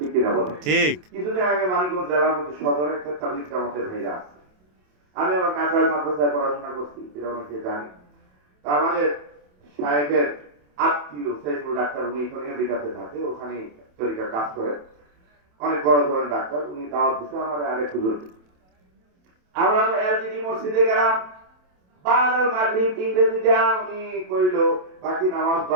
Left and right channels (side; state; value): left; late; 27 ms